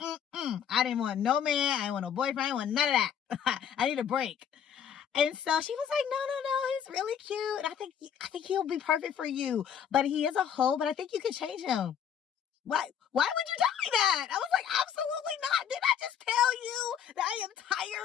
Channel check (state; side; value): quieter; right; 8.6 dB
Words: didn't want no man. I didn't want no boyfriend. I didn't want none of that. I need a break. And so she was like, no, he's really cute. I think he'll be perfect for you. But he is a hoe, but I think you can change him. Why would you tell me that? I was like, absolutely not. Did I just tell you that I am